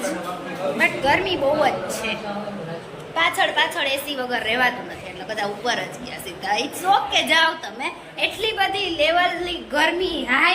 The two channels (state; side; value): identical; both; correlation 1.00